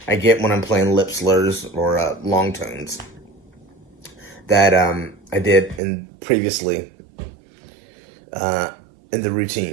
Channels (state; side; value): drops out; left; at 5.8 s